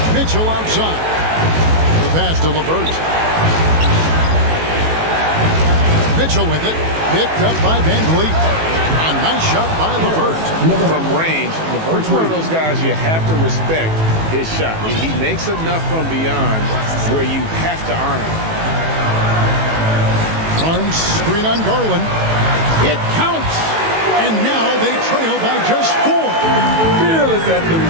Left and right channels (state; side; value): late; left; 18 ms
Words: Mitchell outside. The pass to LeVert. Mitchell with it. Picked up by Van Vliet. A nice shot by LeVert. From range, LeVert's one of those guys you have to respect his shot. He makes enough from beyond where you have to honor him. Barnes screen on Garland. It counts. And now they trail by just 4. Fearless at the